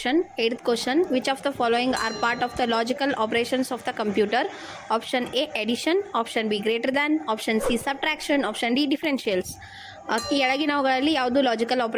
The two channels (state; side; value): identical; both; correlation 1.00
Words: 8th question. Which of the following are part of the logical operations of the computer? Option A, addition. Option B, greater than. Option C, subtraction. Option D, differentials. ಈ ಕೆಳಗಿನವುಗಳಲ್ಲಿ ಯಾವುದು logical